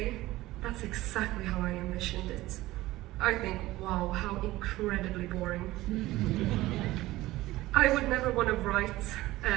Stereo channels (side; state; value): left; quieter; 17.5 dB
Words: that's exactly how I envisioned it, I think, wow, how incredibly boring. I would never want to write